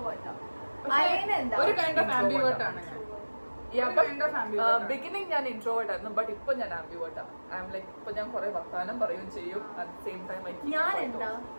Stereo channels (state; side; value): inverted; both; correlation -1.00